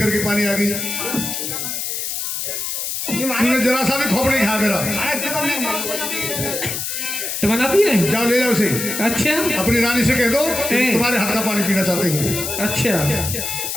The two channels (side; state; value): left; noise; hiss, 3 dB below the sound